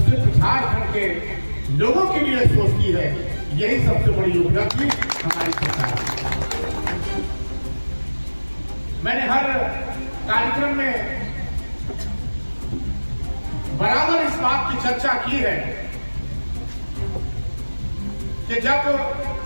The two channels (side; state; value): both; inverted; correlation -1.00